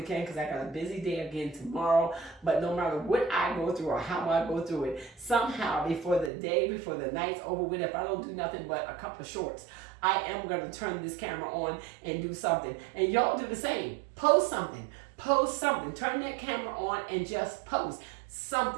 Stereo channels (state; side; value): drops out; left; at 6.3 s